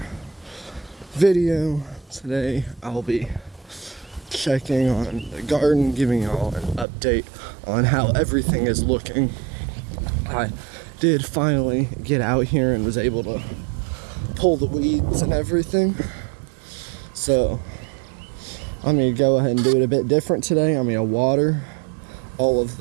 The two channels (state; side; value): drops out; left; at 6.9 s